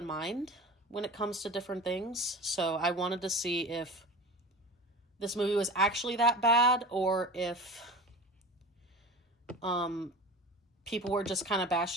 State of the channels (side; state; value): both; normal; correlation 0.34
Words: mind when it comes to different things. So I wanted to see if this movie was actually that bad, or if people were just kind of